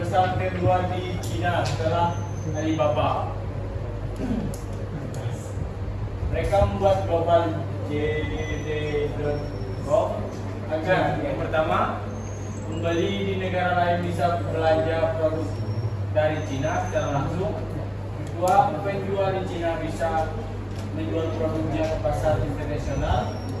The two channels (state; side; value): identical; both; correlation 1.00